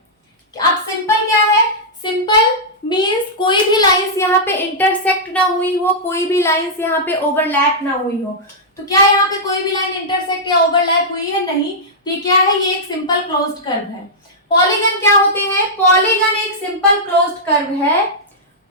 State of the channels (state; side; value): normal; both; correlation -0.10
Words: अब सिंपल क्या है? सिंपल मींस कोई भी लाइंस यहाँ पे इंटरसेक्ट ना हुई हो, कोई भी लाइंस यहाँ पे ओवरलैप ना हुई हो। तो क्या यहाँ पे कोई भी लाइन इंटरसेक्ट या ओवरलैप हुई है? नहीं। ये क्या है? ये एक सिंपल क्लोज्ड कर्व है। पॉलीगन क्या होते हैं? पॉलीगन एक सिंपल क्लोज्ड कर्व है।